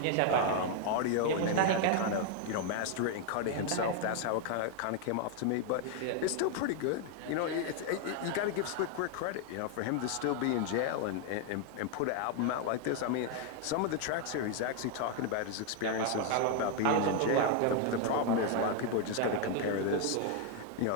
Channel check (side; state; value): both; different; correlation 0.00